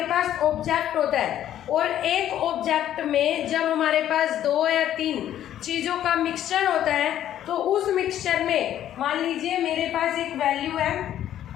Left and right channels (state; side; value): quieter; right; 11.5 dB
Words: पास ऑब्जेक्ट होता है और एक ऑब्जेक्ट में जब हमारे पास 2 या 3 चीज़ों का मिक्सचर होता है तो उस मिक्सचर में मान लीजिए मेरे पास एक वैल्यू है,